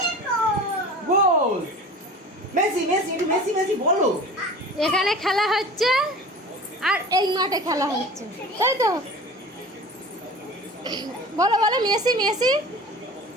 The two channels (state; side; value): normal; both; correlation 0.37